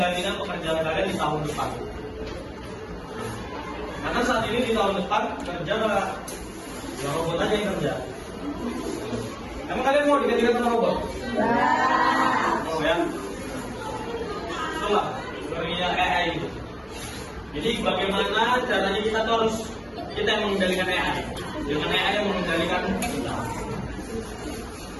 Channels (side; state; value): both; identical; correlation 1.00